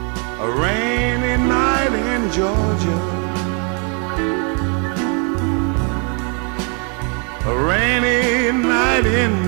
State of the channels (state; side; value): quieter; left; 37.1 dB